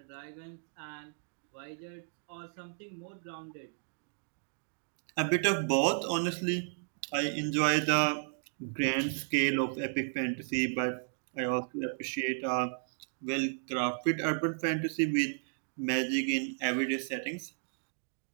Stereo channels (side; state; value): left; silent; digital silence